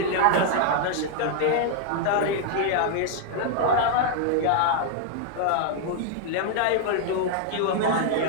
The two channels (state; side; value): different; both; correlation 0.00